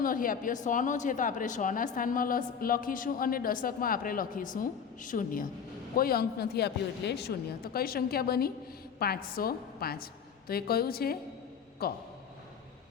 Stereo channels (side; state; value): right; quieter; 6.9 dB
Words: નથી આપ્યો, 100નો છે તો આપણે 100ના સ્થાનમાં લખીશું, અને દશકમાં આપણે લખીશું 0. કોઈ અંક નથી આપ્યો એટલે 0. તો કઈ સંખ્યા બની? 505. તો એ કયું છે? ક.